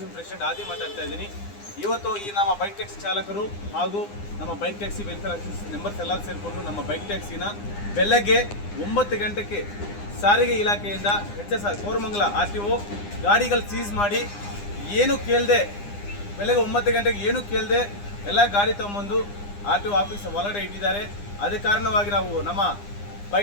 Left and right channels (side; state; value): right; late; 9.8 ms